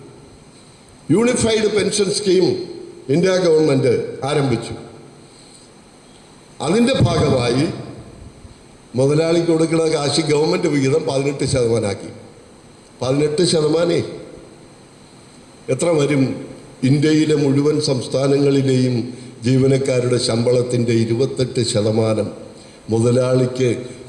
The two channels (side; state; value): both; identical; correlation 1.00